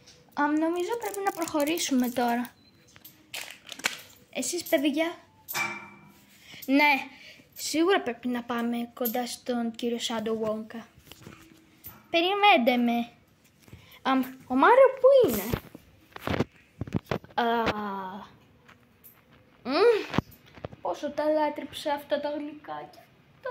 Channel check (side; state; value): both; identical; correlation 1.00